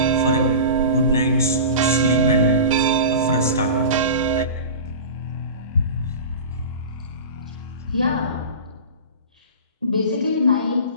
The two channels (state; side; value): inverted; both; correlation -0.32